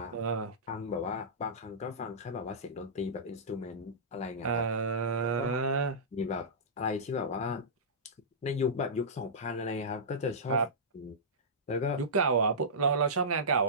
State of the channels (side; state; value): both; normal; correlation -0.17